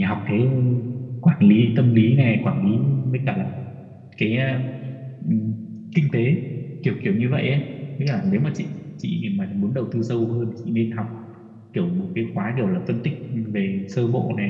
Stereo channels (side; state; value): both; identical; correlation 1.00